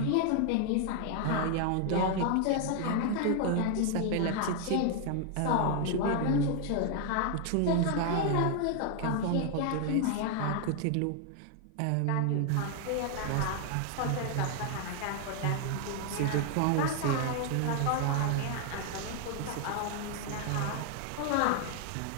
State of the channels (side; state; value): both; different; correlation 0.00